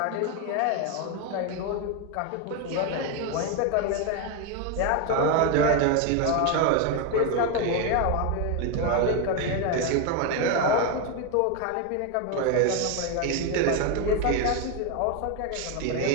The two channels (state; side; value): different; both; correlation 0.02